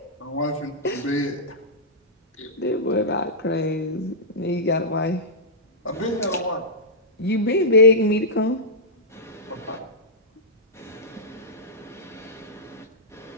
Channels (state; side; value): normal; both; correlation -0.13